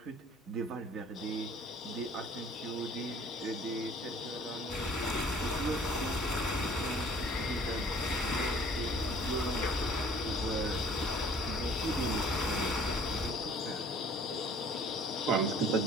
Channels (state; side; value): normal; both; correlation 0.53